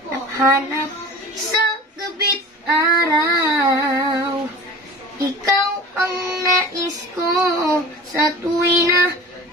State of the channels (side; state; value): both; normal; correlation 0.38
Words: sa gabi't araw. Ikaw ang nais ko sa tuwi na